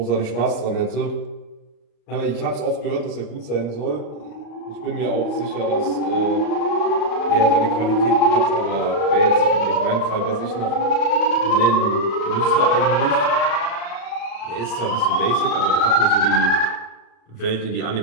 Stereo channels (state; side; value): late; right; 35 ms